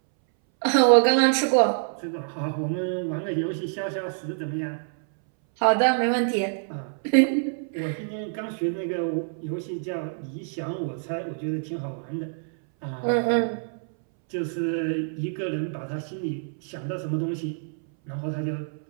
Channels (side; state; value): left; silent; 61 dB below the other